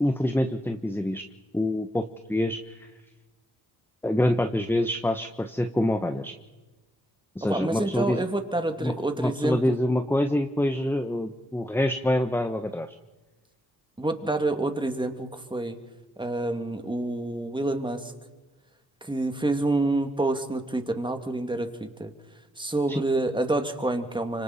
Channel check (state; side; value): normal; both; correlation 0.82